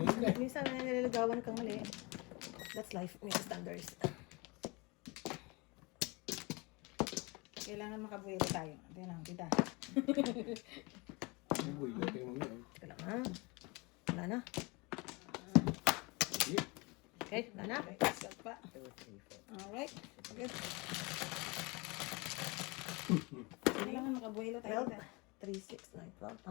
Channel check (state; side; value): quieter; right; 26.8 dB